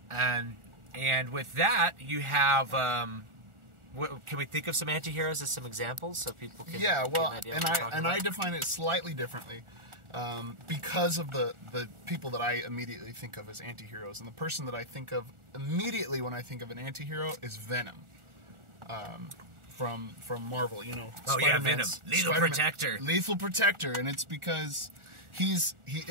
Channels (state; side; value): late; left; 1.4 ms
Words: And with that, you have... can we think of some anti-heroes as some examples so people can get an idea of what we're talking about? I define it slightly differently because of the people that I immediately think of as anti-heroes. And the person that I think of immediately when I think of an anti-hero is Venom. From Marvel, you know. Oh yeah, Venom, Lethal Protector. Lethal Protector, and it's because he